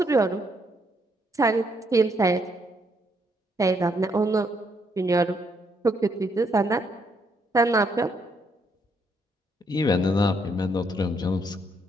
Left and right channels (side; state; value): both; normal; correlation 0.73